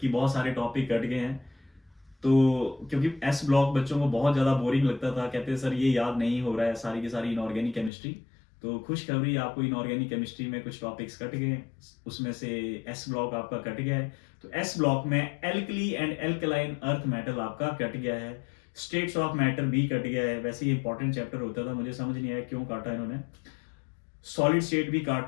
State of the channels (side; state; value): right; drops out; at 7.9 s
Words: बहुत सारे टॉपिक कट गए हैं। तो क्योंकि एस ब्लॉक बच्चों को बहुत ज्यादा बोरिंग लगता था, कहते हैं सर ये याद नहीं हो रहा है, सारी की सारी इनऑर्गेनिक केमिस्ट्री। तो खुशखबरी, आपको इनऑर्गेनिक केमिस्ट्री में कुछ टॉपिक्स कट गए, उसमें से एस ब्लॉक आपका कट गया है। तो एस ब्लॉक में alkali and alkaline earth metal आपका कट गया है, स्टेट्स ऑफ मैटर भी कट गया है। वैसे ही इंपॉर्टेंट चैप्टर होता था, मुझे समझ नहीं आया क्यों काटा इन्होंने। सॉलिड स्टेट भी